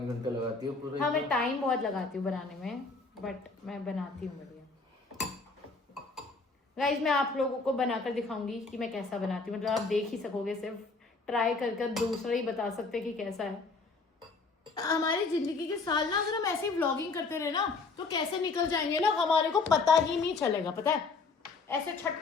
घंटे लगाती है पूरे। हाँ, मैं टाइम बहुत लगाती हूँ बनाने में, बट मैं बनाती हूँ बढ़िया। गाइस, मैं आप लोगों को बनाकर दिखाऊंगी कि मैं कैसा बनाती हूँ। मतलब आप देख ही सकोगे, सिर्फ ट्राई करके दूसरा ही बता सकते कि कैसा है। हमारी जिंदगी के साल ना, अगर हम ऐसे ही व्लॉगिंग करते रहे ना, तो कैसे निकल जाएंगे ना, हमारे को पता ही नहीं चलेगा। पता है, ऐसे छट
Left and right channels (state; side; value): quieter; right; 4.1 dB